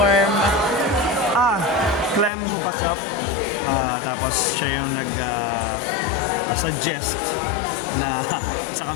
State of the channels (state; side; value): drops out; right; at 2.3 s